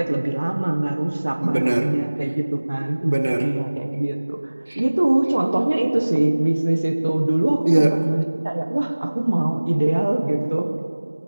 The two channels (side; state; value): both; inverted; correlation -1.00